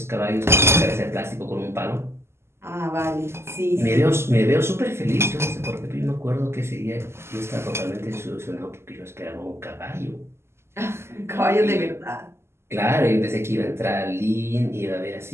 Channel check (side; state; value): left; late; 0.12 ms